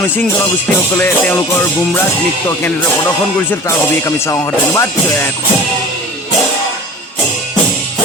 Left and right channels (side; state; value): both; normal; correlation 0.40